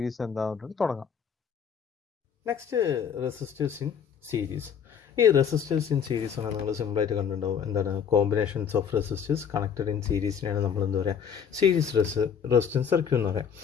എന്താണെന്ന് തുടങ്ങാം. Next resistance in series. ഈ റെസിസ്റ്റേഴ്സ് ഇൻ സീരീസ് ആണ് നിങ്ങൾ സിമ്പിളായിട്ട് കണ്ടിട്ടുണ്ടാവും. എന്താണ് combinations of resistors connected in സീരീസിനെയാണ് നമ്മൾ എന്താ പറയുക സീരീസ് റെസിസ്റ്റൻസ് സർക്യൂട്ട് എന്ന് പറയാം.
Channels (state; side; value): quieter; right; 7.5 dB